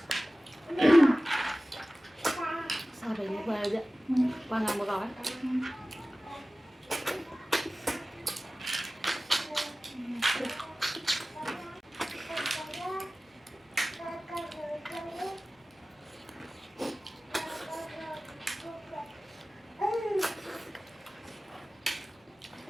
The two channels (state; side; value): normal; both; correlation 0.97